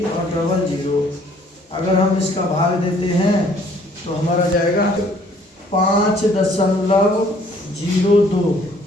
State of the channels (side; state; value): both; normal; correlation 0.59